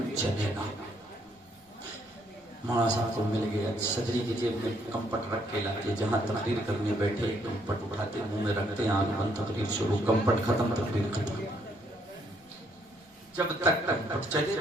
چلے گا۔ مولانا صاحب کو مل گیا، صدری کی جیب میں کمپٹ رکھ کے لاتے، جہاں تقریر کرنے بیٹھے کمپٹ اٹھاتے منہ میں رکھتے، آنکھ بند، تقریر شروع، کمپٹ ختم، تقریر ختم، جب تک کمپٹ چلے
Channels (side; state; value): both; normal; correlation 0.70